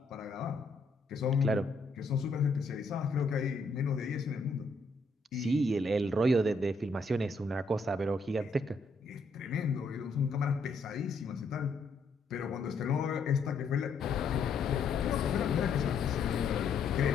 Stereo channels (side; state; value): right; quieter; 3.5 dB